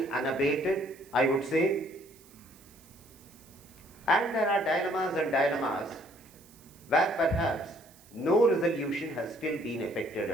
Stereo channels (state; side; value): noise; right; hiss, 25 dB below the sound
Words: unabated, I would say. And there are dilemmas where perhaps no resolution has still been effected